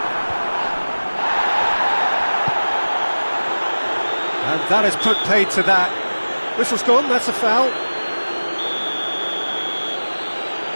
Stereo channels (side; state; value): both; inverted; correlation -1.00